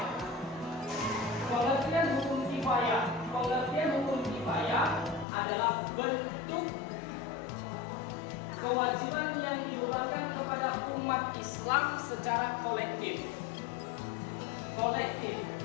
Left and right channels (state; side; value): drops out; right; at 5.2 s